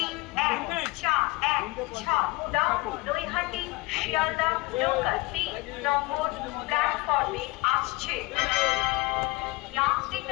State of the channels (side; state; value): right; quieter; 22.5 dB